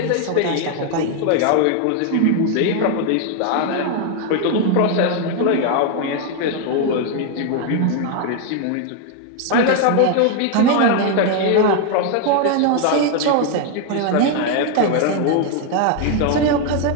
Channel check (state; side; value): different; both; correlation 0.00